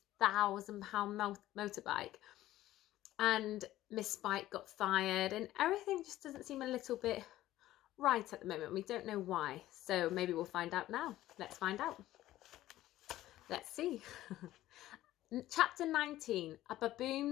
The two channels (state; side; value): quieter; right; 14.8 dB